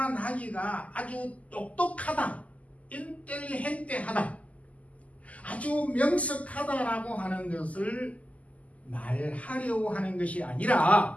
나귀가 아주 똑똑하다, 인텔리헨트하다, 아주 명석하다라고 하는 것을 말하려고 하는 것이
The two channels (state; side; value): late; right; 0.071 ms